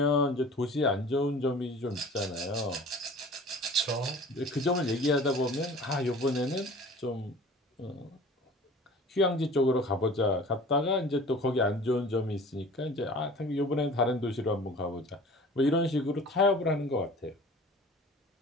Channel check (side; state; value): both; normal; correlation 0.44